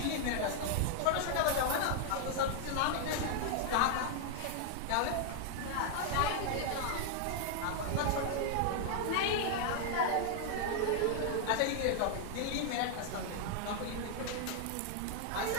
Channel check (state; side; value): different; both; correlation 0.00